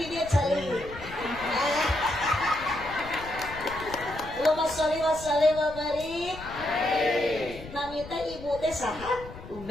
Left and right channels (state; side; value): noise; left; rumble, 15 dB below the sound